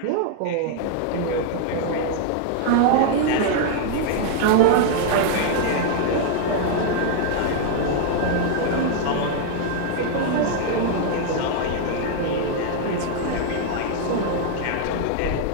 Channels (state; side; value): different; both; correlation 0.00